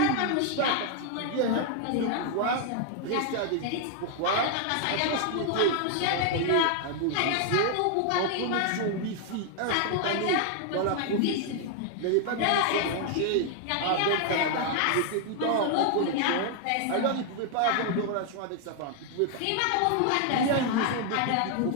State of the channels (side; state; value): both; different; correlation 0.00